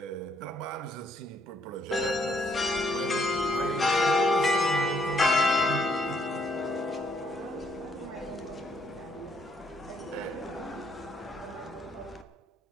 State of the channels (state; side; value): normal; both; correlation 0.69